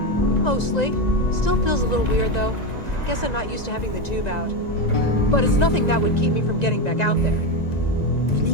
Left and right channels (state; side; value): late; right; 1.9 ms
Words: Mostly. Still feels a little weird, though. Guess I'm not used to having the tube out. But it's nothing that would keep me from getting back out there. You